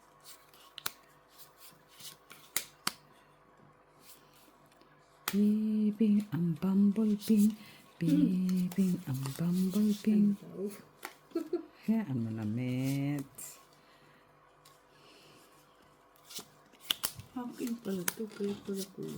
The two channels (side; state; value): both; identical; correlation 1.00